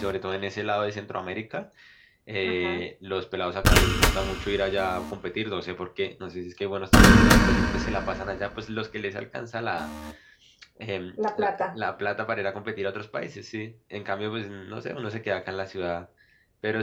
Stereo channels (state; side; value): identical; both; correlation 1.00